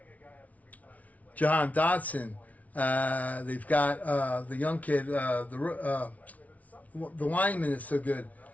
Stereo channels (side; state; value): right; late; 0.070 ms